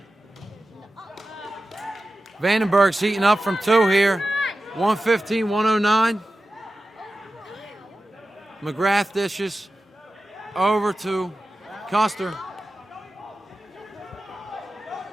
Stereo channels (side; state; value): both; normal; correlation 0.94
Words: Vandenberg's heating up from 2 here. 115, 109. McGrath dishes over to Custer.